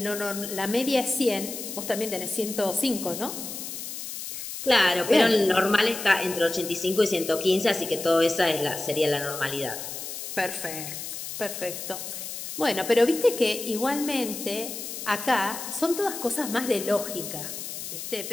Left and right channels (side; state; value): left; noise; hiss, 8 dB below the sound